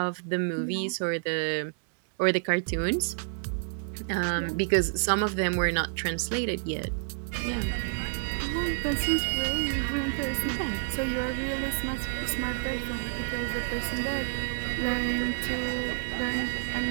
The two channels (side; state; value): left; silent; digital silence